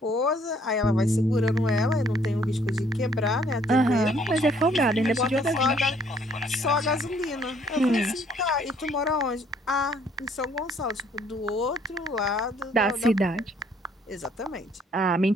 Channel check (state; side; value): normal; both; correlation 0.63